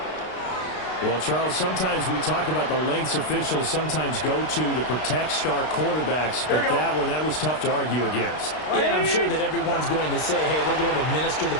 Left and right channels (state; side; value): late; right; 32 ms